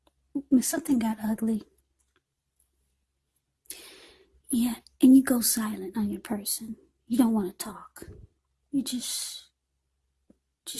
got ugly. Yeah, and you go silent on your person. You don't want to talk. You just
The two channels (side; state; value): both; identical; correlation 1.00